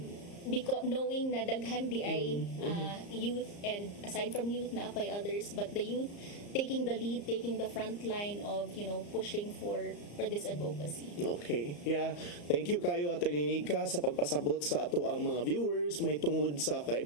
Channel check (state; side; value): late; right; 34 ms